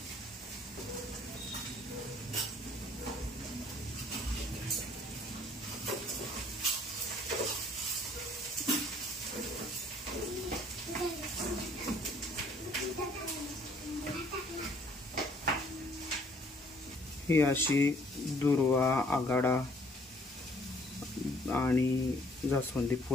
ही अशी दुर्वा, आघाडा आणि जास्वंदी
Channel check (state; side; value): normal; both; correlation 0.60